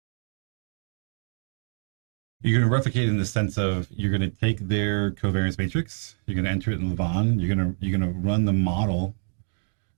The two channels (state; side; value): silent; left; digital silence